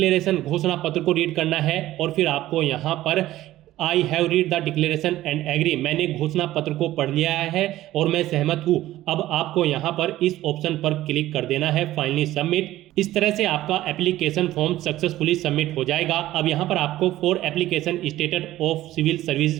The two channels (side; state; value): left; quieter; 15.0 dB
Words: घोषणा पत्र को रीड करना है और फिर आपको यहाँ पर I have read the declaration and agree, मैंने घोषणा पत्र को पढ़ लिया है और मैं सहमत हूँ। अब आपको यहाँ पर इस ऑप्शन पर क्लिक कर देना है फाइनली सबमिट। इस तरह से आपका एप्लीकेशन फॉर्म सक्सेसफुली सबमिट हो जाएगा। अब यहाँ पर आपको for application status of civil service